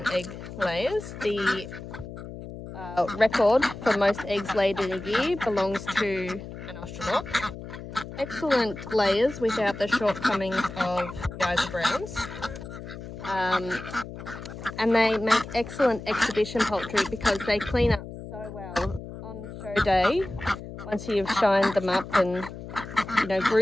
egg layers. The record for most eggs laid in a year belongs to an Australorp. Excellent layers without the shortcomings of the Isa Browns. And they make excellent exhibition poultry because they clean up so well on show day. Once you've shined them up and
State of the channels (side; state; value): left; noise; hum, 11 dB below the sound